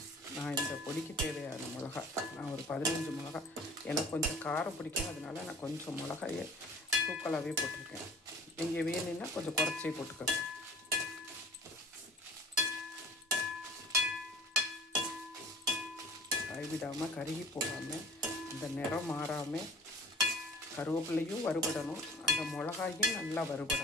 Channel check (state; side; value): normal; both; correlation 0.43